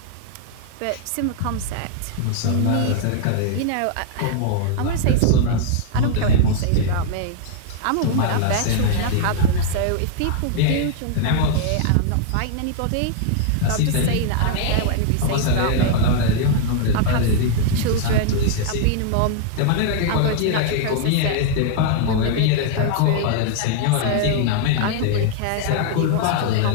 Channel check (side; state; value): both; different; correlation -0.01